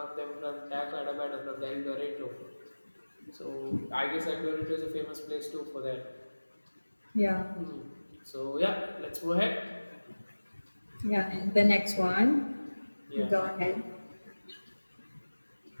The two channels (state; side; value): inverted; both; correlation -1.00